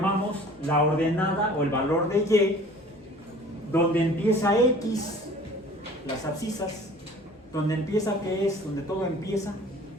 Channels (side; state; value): both; normal; correlation 0.47